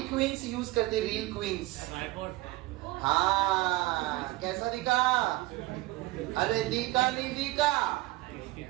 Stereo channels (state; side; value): quieter; left; 19.3 dB